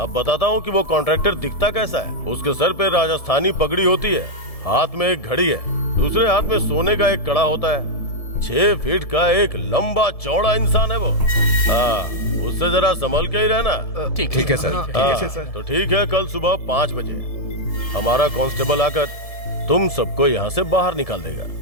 बताता हूँ कि वो कॉन्ट्रैक्टर दिखता कैसा है। उसके सर पे राजस्थानी पगड़ी होती है, हाथ में एक घड़ी है, दूसरे हाथ में सोने का एक कड़ा होता है। 6 फीट का एक लंबा चौड़ा इंसान है वो। उससे जरा संभल के ही रहना। ठीक है सर। तो ठीक है, कल सुबह 5 बजे हमारा कांस्टेबल आकर तुम सबको यहाँ से बाहर निकाल देगा,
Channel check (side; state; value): right; late; 1.7 ms